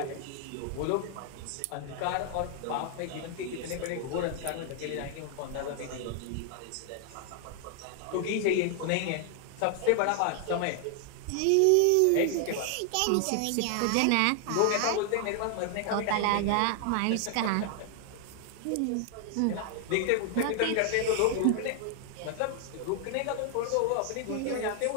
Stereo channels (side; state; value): both; different; correlation 0.00